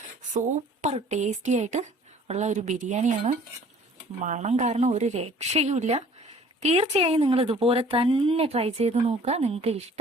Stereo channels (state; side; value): normal; both; correlation 0.52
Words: സൂപ്പർ ടേസ്റ്റി ആയിട്ട് ഉള്ള ഒരു ബിരിയാണിയാണ്. മണം കാരണം ഒരു രക്ഷയുമില്ല. തീർച്ചയായും നിങ്ങൾ ഇതുപോലെ തന്നെ ട്രൈ ചെയ്ത് നോക്കുക. നിങ്ങൾക്ക്